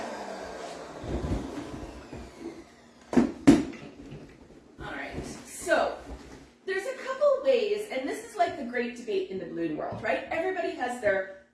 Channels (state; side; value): identical; both; correlation 1.00